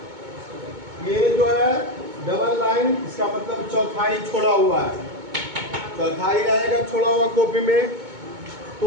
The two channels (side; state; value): left; late; 2.2 ms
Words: ये जो है डबल लाइन, इसका मतलब चौथाई छोड़ा हुआ है। चौथाई रहेगा छोड़ा हुआ कॉपी में